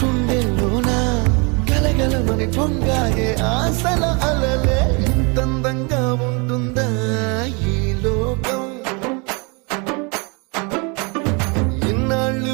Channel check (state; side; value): quieter; left; 31.8 dB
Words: గుండెల్లోన గలగలమని పొంగాయే ఆశల అలలే ఇంతందంగా ఉంటుందా ఈ లోకం